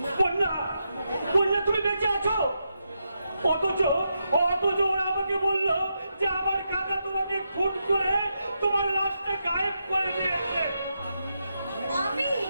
বন্যা, বন্যা, তুমি বেঁচে আছো? অথচ ওরা আমাকে বললো যে আমার কাকা তোমাকে খুন করে তোমার লাশটা গায়েব করে দিয়েছে। আমি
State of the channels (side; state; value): both; inverted; correlation -0.84